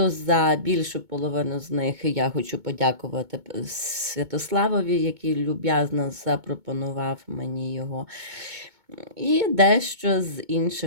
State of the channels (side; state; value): left; late; 2.2 ms